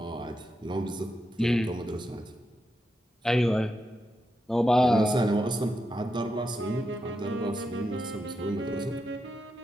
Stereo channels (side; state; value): both; normal; correlation 0.86